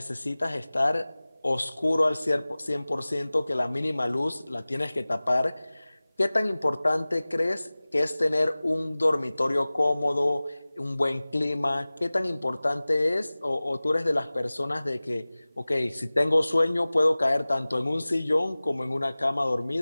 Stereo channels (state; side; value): inverted; both; correlation -0.99